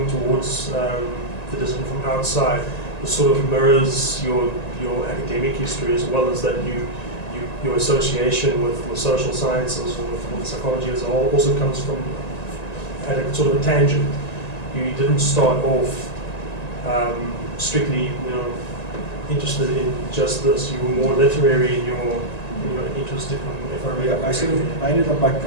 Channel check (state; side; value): late; right; 1.9 ms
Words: towards the discipline from outside, it sort of mirrors your academic history, as well as that your association with social sciences or with psychology as a whole also comes from at a sort of a tangent. You didn't start off strictly, you know, interested in just this. You were more literary in your interest, if I remember. Yeah, I ended up, like